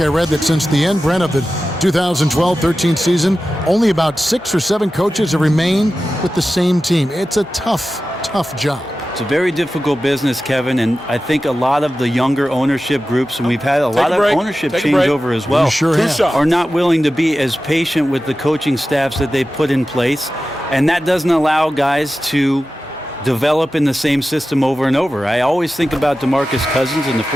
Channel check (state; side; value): normal; both; correlation 0.94